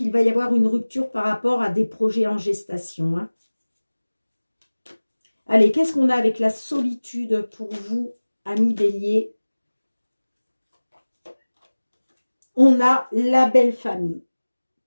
va y avoir une rupture par rapport à des projets en gestation, hein. Allez, qu'est-ce qu'on a avec la solitude pour vous, amis bélier? On a la belle famille.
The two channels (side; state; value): both; inverted; correlation -1.00